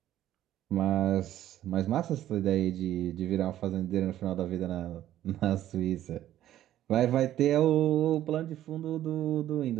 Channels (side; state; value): left; quieter; 12.6 dB